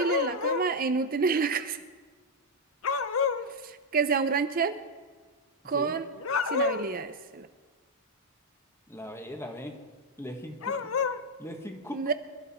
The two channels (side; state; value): both; normal; correlation 0.01